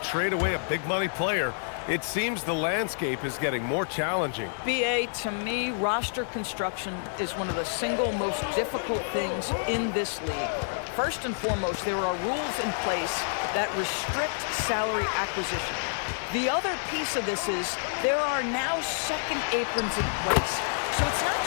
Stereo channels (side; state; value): right; silent; digital silence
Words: away a big money player. It seems the landscape is getting more challenging. BA, to me, roster construction is one of the single most difficult things in this league. First and foremost, there are rules in place that restrict salary acquisition. The other piece of this is there are now second aprons in place. So it's not